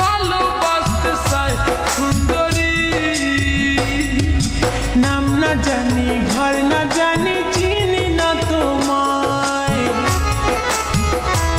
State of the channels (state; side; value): identical; both; correlation 1.00